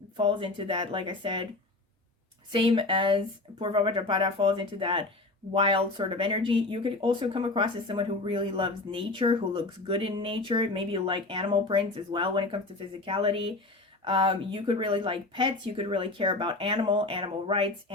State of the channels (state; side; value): quieter; right; 3.1 dB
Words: falls into that, like I said, same as Purva Bhadrapada, falls into that wild sort of energy. You could also come across as someone who really loves nature, who looks good in nature. Maybe you like animal prints as well when it comes to physicality. You could really like pets. You could really care about animal rights,